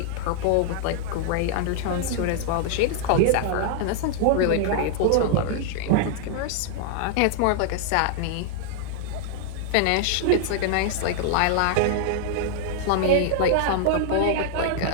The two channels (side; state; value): both; different; correlation -0.01